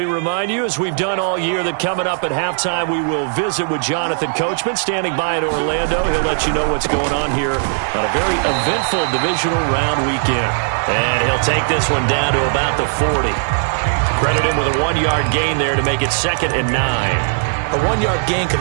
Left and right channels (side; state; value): left; silent; digital silence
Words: remind you, as we've done all year, that coming up at halftime, we will visit with Jonathan Coachman, standing by in Orlando. He'll let you know what's going on here on a very eventful divisional round weekend. And he'll take this one down to about the 40. Credit him with a 1-yard gain there to make it 2nd and 9. A 1-yard gain